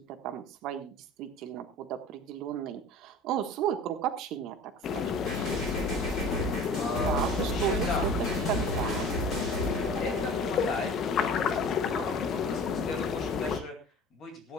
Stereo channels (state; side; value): normal; both; correlation 0.41